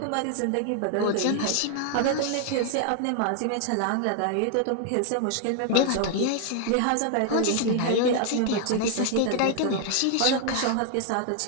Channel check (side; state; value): both; different; correlation 0.00